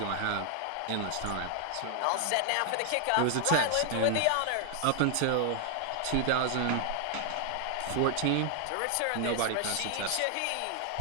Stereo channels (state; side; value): different; both; correlation 0.00